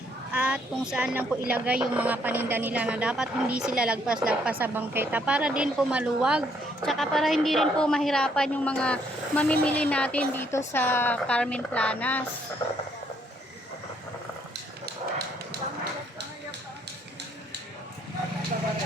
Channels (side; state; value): both; normal; correlation 0.69